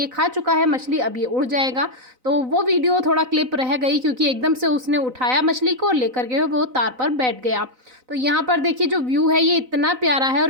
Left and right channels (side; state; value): left; late; 4.0 ms